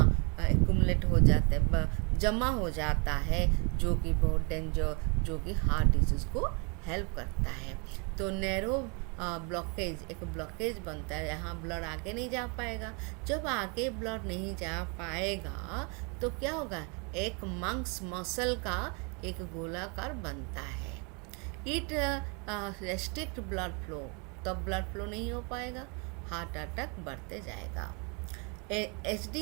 एक्यूमुलेट हो जाता है, जमा हो जाता है, जो कि बहुत डेंजर, जो कि हार्ट डिजीज को हेल्प करता है। तो नैरो ब्लॉकेज, एक ब्लॉकेज बनता है, यहाँ ब्लड आगे नहीं जा पाएगा। जब आगे ब्लड नहीं जा पाएगा तो क्या होगा? एक मसल का एक गोलाकार बनता है। इट रेस्ट्रिक्ट ब्लड फ्लो, तब ब्लड फ्लो नहीं हो पाएगा, हार्ट अटैक बढ़ते जाएगा।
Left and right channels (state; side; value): quieter; left; 33.4 dB